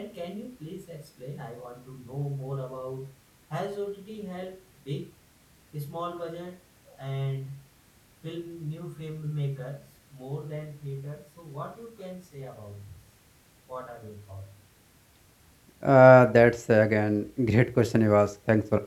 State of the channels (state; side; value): identical; both; correlation 1.00